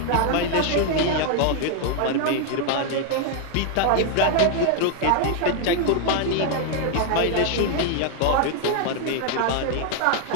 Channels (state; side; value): different; both; correlation 0.00